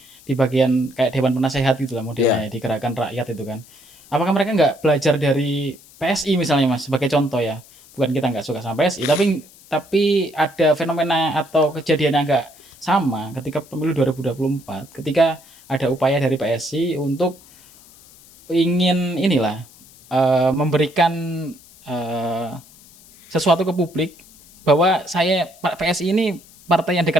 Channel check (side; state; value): left; noise; hiss, 24 dB below the sound